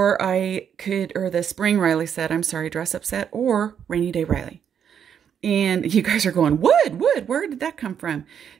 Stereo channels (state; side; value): quieter; left; 8.2 dB